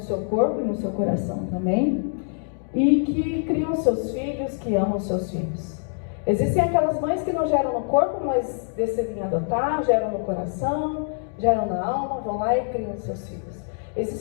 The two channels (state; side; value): silent; right; 62 dB below the other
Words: seu corpo e no seu coração também, e que criam seus filhos, que amam seus filhos. Existem aquelas mães que não geram no corpo, mas decidem adotar, geram no coração, geram na alma, vão lá e criam seus filhos.